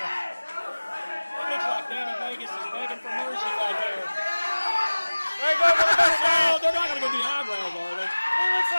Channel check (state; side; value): inverted; both; correlation -1.00